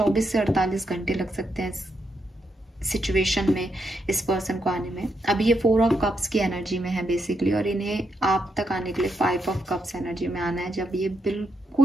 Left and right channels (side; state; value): both; normal; correlation 0.81